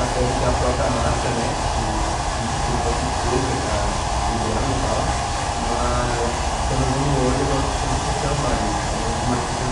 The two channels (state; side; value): identical; both; correlation 1.00